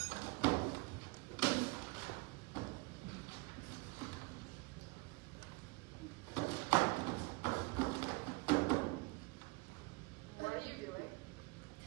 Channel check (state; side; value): quieter; left; 26.2 dB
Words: What are you doing?